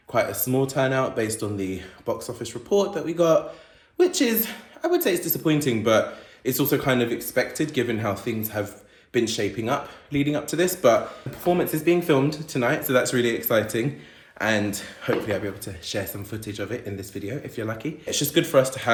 quite a small turnout based on the box office report that we got, which is, I would say it's disappointing, but it's also kind of expected given how things have been shaping up leading up to this. But the performance is being filmed tonight, so that's really exciting. And hopefully I'll be able to share some footage of it in this video if you're lucky. It's just good for us to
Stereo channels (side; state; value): both; identical; correlation 1.00